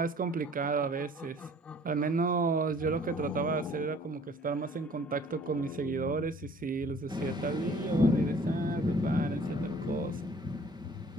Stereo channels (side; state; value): both; normal; correlation 0.53